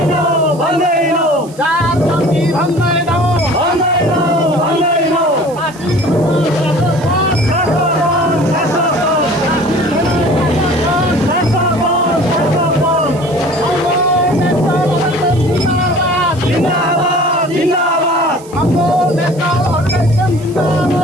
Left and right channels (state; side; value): noise; right; hiss, 23 dB below the sound